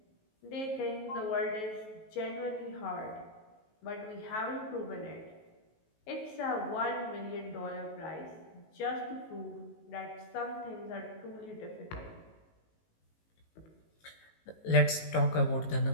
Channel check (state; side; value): late; right; 19 ms